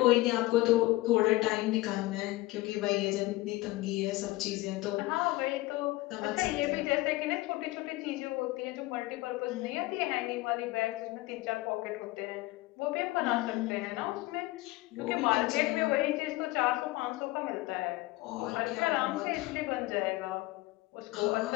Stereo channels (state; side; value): quieter; right; 19.6 dB